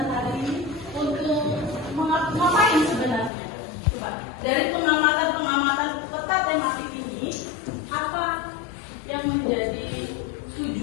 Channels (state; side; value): drops out; right; at 3.3 s